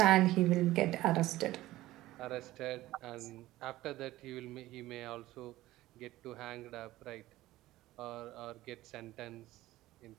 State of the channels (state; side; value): quieter; left; 16.5 dB